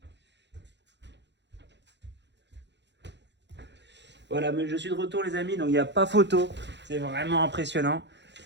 Voilà, mais je suis de retour les amis, donc il n'y a pas photo. C'est vraiment impressionnant.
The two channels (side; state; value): left; late; 0.51 ms